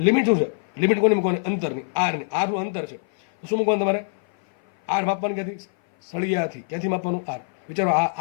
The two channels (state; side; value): silent; right; 57 dB below the other